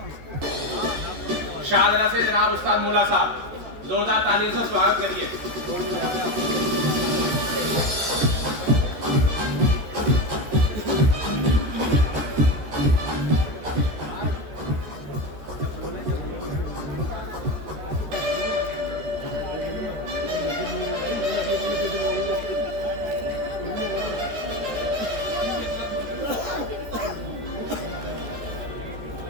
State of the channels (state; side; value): late; left; 14 ms